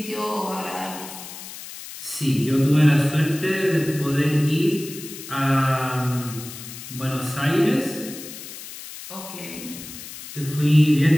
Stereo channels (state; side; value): noise; left; hiss, 13 dB below the sound